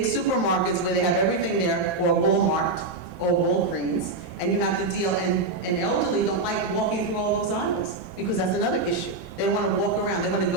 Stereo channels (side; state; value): left; quieter; 3.3 dB